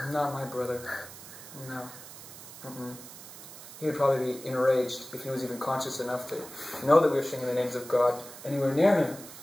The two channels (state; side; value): noise; right; hiss, 15 dB below the sound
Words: Not my brother. No. He would probably be enraged if he was even conscious enough to know that we were singing the names of God anywhere near him.